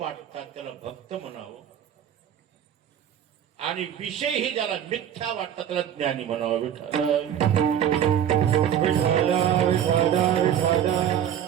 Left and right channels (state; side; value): quieter; left; 9.7 dB